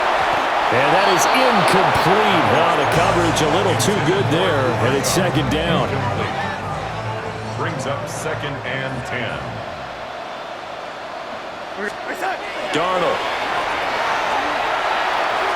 And that is incomplete. Now the coverage a little too good there, and it's second down. Brings up 2nd and 10. Darnold.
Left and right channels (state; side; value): identical; both; correlation 1.00